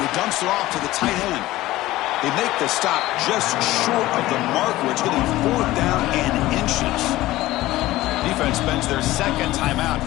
dumps it off to the tight end. They make the stop just short of the marker. It's going to be 4th down and inches. Defense spends their second timeout to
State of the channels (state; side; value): quieter; right; 17.0 dB